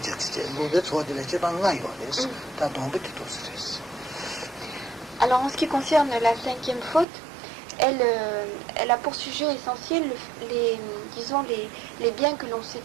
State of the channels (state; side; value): drops out; left; at 7.1 s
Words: Lobetso, the Lechebangayo, this, that don't be to stress. Alors en ce qui concerne la cinquième faute, elle a pour sujet essentiel les biens que l'on